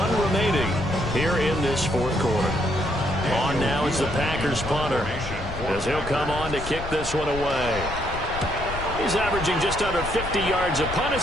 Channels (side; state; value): left; noise; rumble, 9 dB below the sound